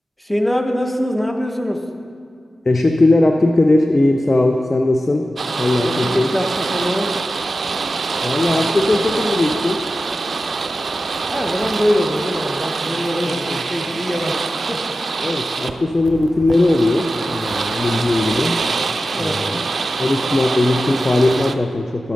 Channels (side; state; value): both; normal; correlation 0.93